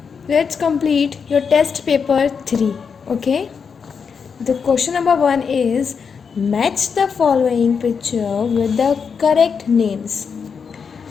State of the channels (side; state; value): right; quieter; 6.1 dB